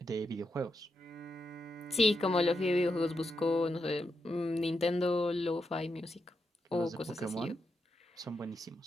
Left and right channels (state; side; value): normal; both; correlation 0.85